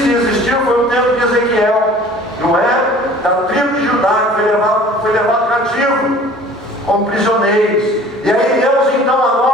que existiu foi o tempo de Ezequiel, não é? Da tribo de Judá, que foi levado cativo, como prisioneiros. E aí Deus então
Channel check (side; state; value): both; normal; correlation 0.47